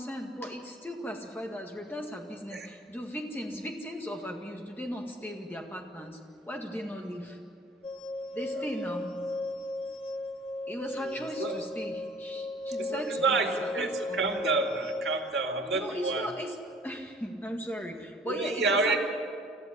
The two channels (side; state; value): both; normal; correlation 0.52